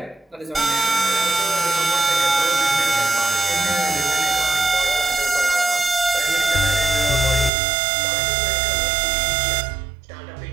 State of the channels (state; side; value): drops out; left; at 7.5 s